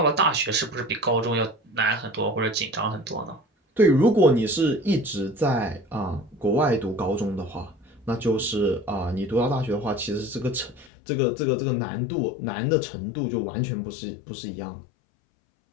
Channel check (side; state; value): right; drops out; at 10.9 s